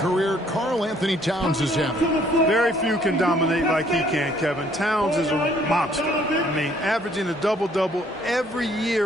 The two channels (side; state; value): both; normal; correlation 0.63